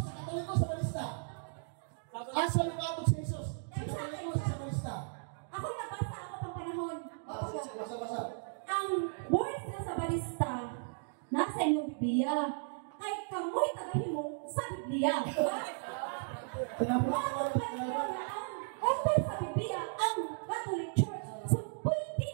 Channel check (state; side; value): silent; left; digital silence